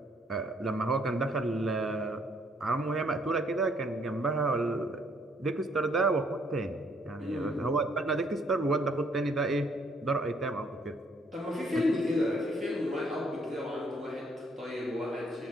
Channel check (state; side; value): normal; both; correlation 0.66